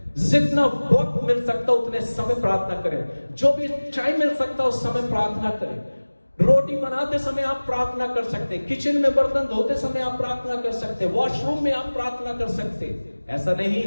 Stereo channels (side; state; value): both; inverted; correlation -1.00